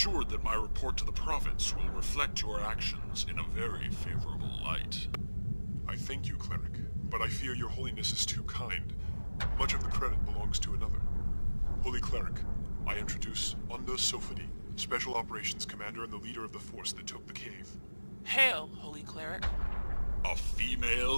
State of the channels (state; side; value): inverted; both; correlation -1.00